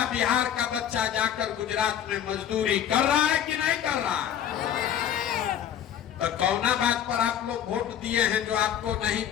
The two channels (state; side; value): quieter; right; 9.9 dB